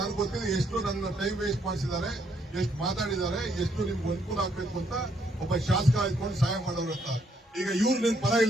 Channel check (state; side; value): normal; both; correlation 0.72